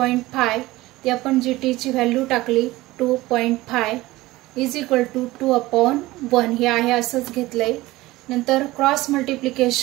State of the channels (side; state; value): left; quieter; 18.6 dB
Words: ती आपण GT ची व्हॅल्यू टाकली 2.5 इज इक्वल टू 2/1. हे आहे असंच घेतलंय. नंतर cross